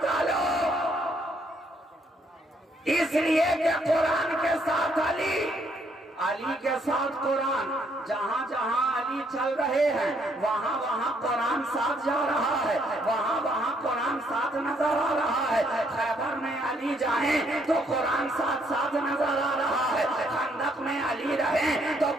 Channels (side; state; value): both; normal; correlation 0.70